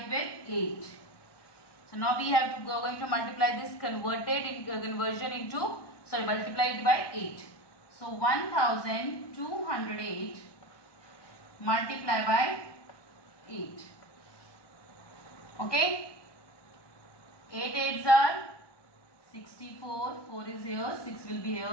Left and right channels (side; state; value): right; late; 1.2 ms